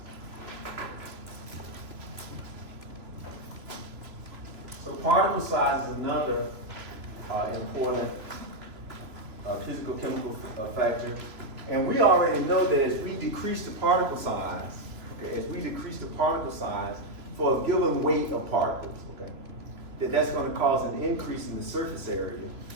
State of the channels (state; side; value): late; left; 3.0 ms